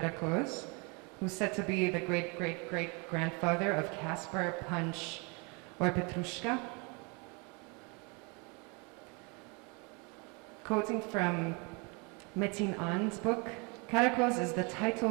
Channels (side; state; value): left; quieter; 31.5 dB